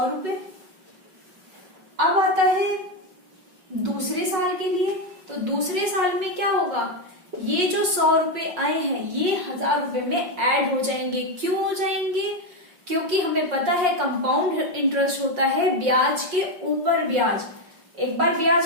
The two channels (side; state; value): left; late; 5.5 ms